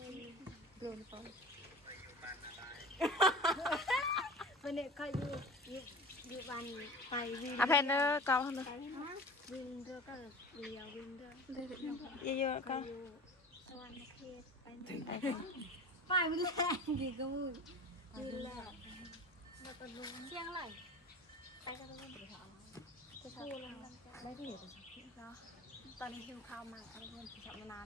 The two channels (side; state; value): both; normal; correlation 0.36